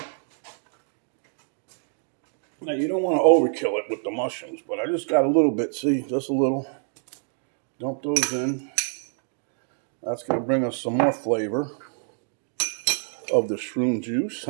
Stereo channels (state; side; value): silent; left; 61 dB below the other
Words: Now you don't want to overkill it with the mushrooms, but I just got a little bit, see, just a little. Dump those in. That's going to bring us some more flavor of the shroom juice,